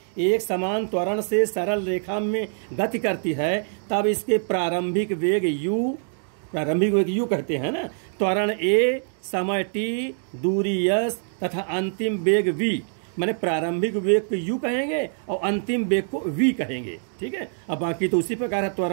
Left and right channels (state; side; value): silent; left; digital silence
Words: एक समान त्वरण से सरल रेखा में गति करती है, तब इसके प्रारंभिक वेग u कहते हैं ना। त्वरण a, समय t, दूरी s तथा अंतिम वेग v, मैंने प्रारंभिक वेग को u कहेंगे और अंतिम वेग को v कहेंगे, ठीक है। अब बाकी तो उसी प्रकार है,